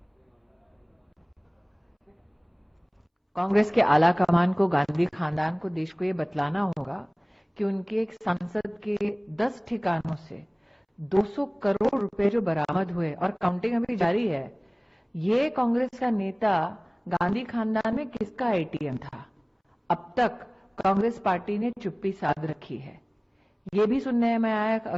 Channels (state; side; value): identical; both; correlation 1.00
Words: कांग्रेस के आला कमान को, गांधी खानदान को, देश को ये बतलाना होगा कि उनके एक सांसद के 10 ठिकानों से 200 करोड़ रुपए जो बरामद हुए और काउंटिंग अभी जारी है, ये कांग्रेस का नेता गांधी खानदान में किसका ATM था? अब तक कांग्रेस पार्टी ने चुप्पी साध रखी है। ये भी सुनने में आया